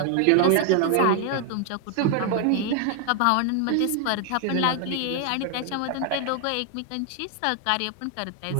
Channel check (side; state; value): both; different; correlation 0.00